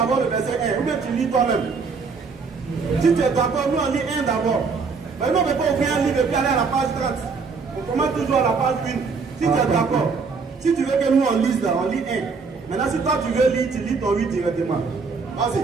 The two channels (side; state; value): left; quieter; 4.9 dB